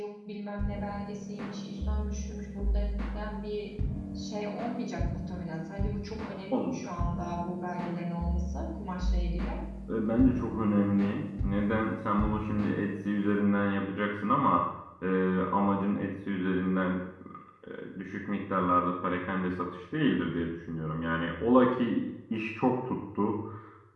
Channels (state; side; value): identical; both; correlation 1.00